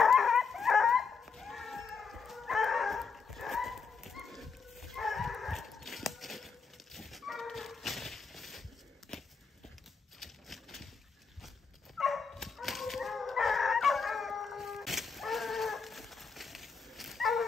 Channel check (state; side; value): quieter; right; 5.3 dB